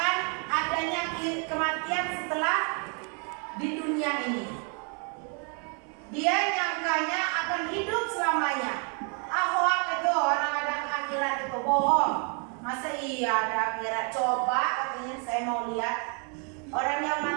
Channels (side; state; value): left; quieter; 38.5 dB